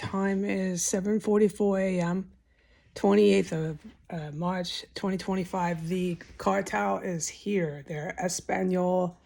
is 7:44 a.m., 28th of March 2025. The cartel is here. They're Espanol,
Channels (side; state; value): both; identical; correlation 1.00